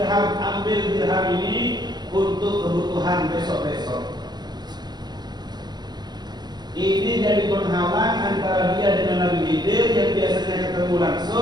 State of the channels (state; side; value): late; left; 0.20 ms